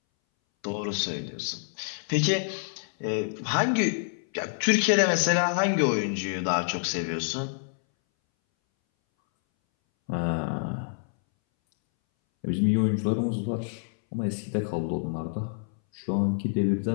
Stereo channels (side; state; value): right; silent; 60 dB below the other